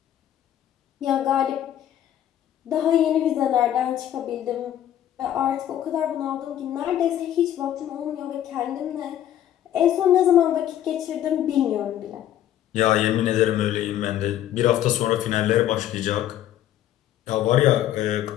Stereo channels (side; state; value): right; quieter; 11.6 dB